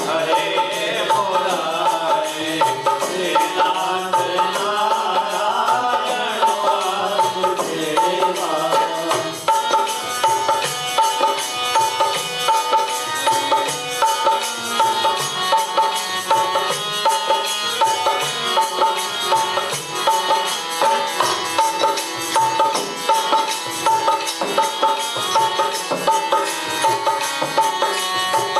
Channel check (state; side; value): identical; both; correlation 1.00